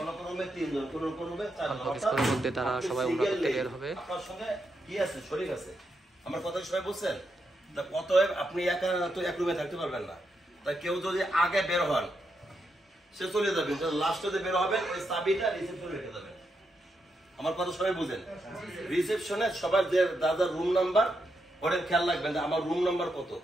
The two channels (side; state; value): both; normal; correlation 0.83